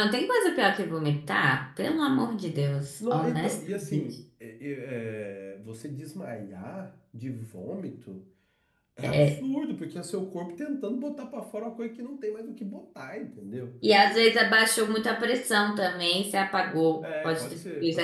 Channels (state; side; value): identical; both; correlation 1.00